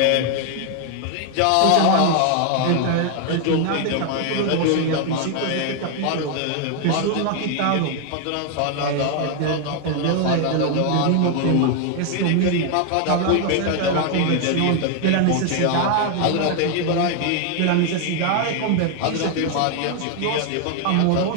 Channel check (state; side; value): different; both; correlation 0.01